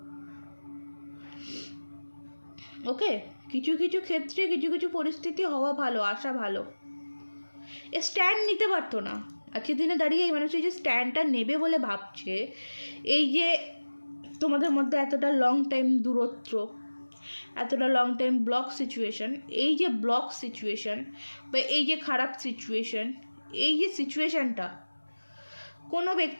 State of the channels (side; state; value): both; inverted; correlation -1.00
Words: ওকে, কিছু কিছু ক্ষেত্রে কিছু কিছু পরিস্থিতি হওয়া ভালো, আসা ভালো। স্ট্যান্ড নিতে পারতো না। আজকের দিনে দাঁড়িয়ে এই মানুষটি যে স্ট্যান্ডটা নেবে বলে ভাবছে, এই যে তোমাদের মধ্যে এতটা লং টাইম দূরত্ব, এতটা লং টাইম ব্লক সিচুয়েশন, এই যে ব্লক সিচুয়েশন বা এই যে খারাপ সিচুয়েশন, এই যে সিচুয়েশানটা কোনো